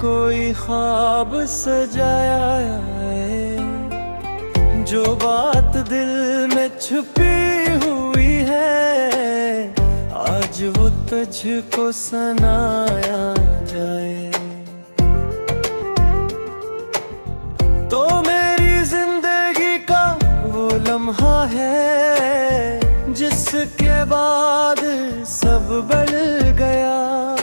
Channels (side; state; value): both; inverted; correlation -1.00